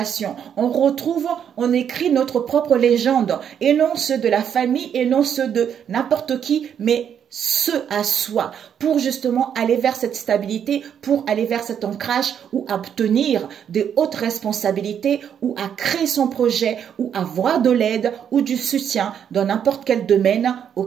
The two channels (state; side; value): quieter; left; 8.5 dB